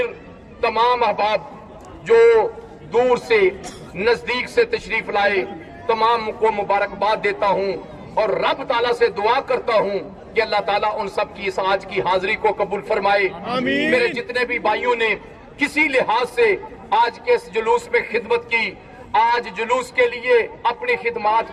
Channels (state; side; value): identical; both; correlation 1.00